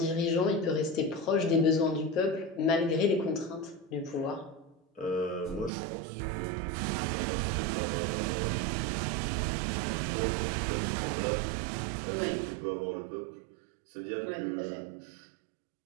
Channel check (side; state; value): left; drops out; at 5.7 s